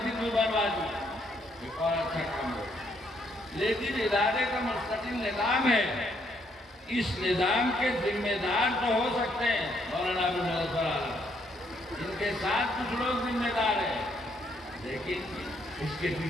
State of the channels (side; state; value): both; normal; correlation 0.72